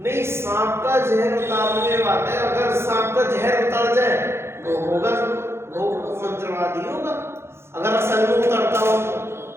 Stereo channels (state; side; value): late; left; 0.12 ms